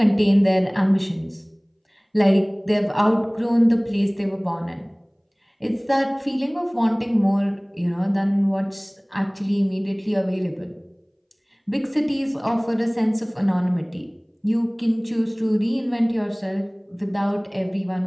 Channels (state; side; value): identical; both; correlation 1.00